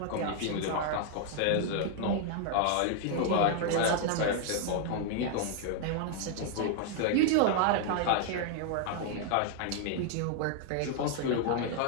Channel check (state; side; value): different; both; correlation 0.00